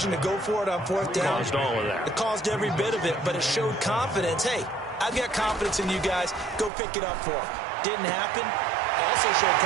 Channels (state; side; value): drops out; left; at 6.7 s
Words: to go for it on 4th down. Caused all of that. It caused every bit of it, but it showed confidence. Hey, I've got confidence in you guys. Go pick it up for them. Didn't happen. Also showed